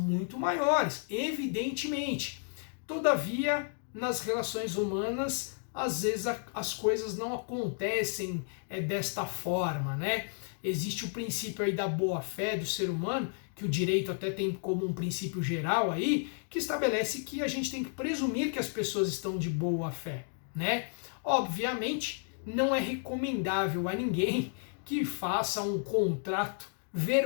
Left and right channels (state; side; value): silent; right; 56 dB below the other